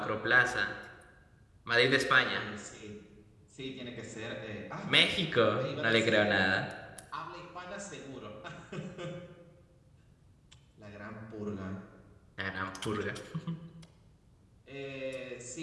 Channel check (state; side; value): identical; both; correlation 1.00